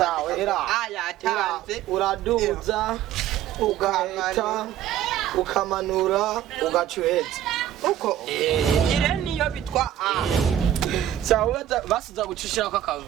era yatanze uraduza ugahita ukamanura ugacuheza uko ire niyo bitwa a sawa basuza gucishira kwa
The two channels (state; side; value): quieter; left; 11.5 dB